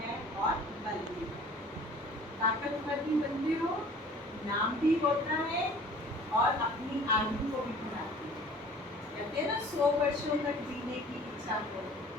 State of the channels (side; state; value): both; normal; correlation 0.49